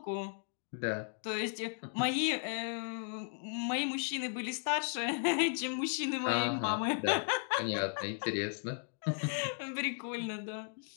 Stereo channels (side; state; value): right; silent; 54 dB below the other